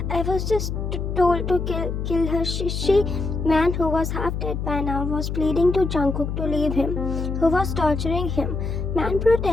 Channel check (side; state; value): left; noise; hum, 3 dB below the sound